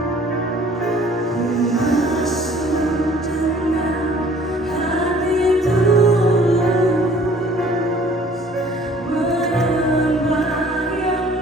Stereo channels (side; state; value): both; normal; correlation 0.54